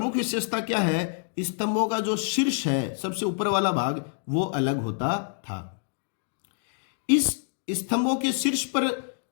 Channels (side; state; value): right; silent; digital silence